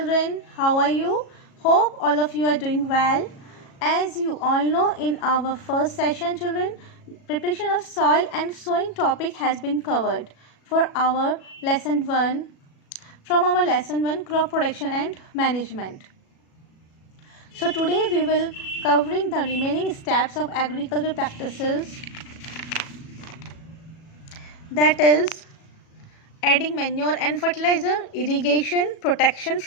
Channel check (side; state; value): right; late; 37 ms